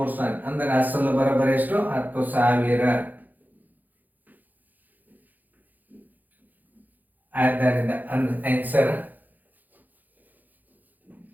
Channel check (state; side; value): late; left; 0.084 ms